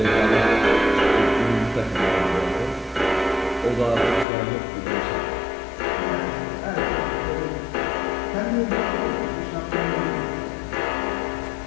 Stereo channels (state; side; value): drops out; right; at 4.2 s